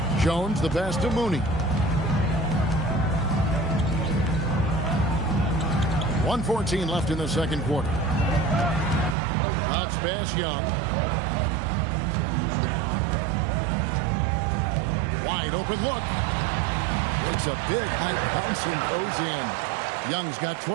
Jones the pass to Mooney. 1:14 left in the second quarter. Bounce pass Young. Wide open look. Takes a big high bounce and goes in. Young's got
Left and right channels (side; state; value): left; drops out; at 9.2 s